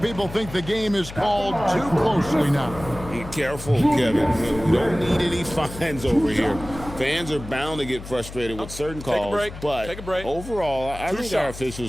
think the game is called too closely now. Be careful, Kevin. We don't need any fines over here. Fans are bound to get frustrated with certain calls. But overall, I think our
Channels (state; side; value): noise; left; hum, 13 dB below the sound